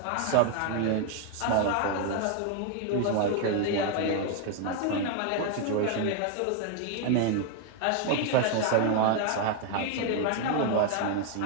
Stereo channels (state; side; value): different; both; correlation 0.01